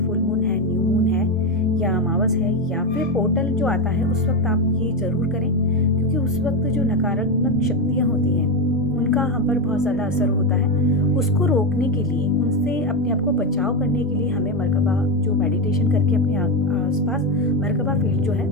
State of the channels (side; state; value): both; normal; correlation 0.10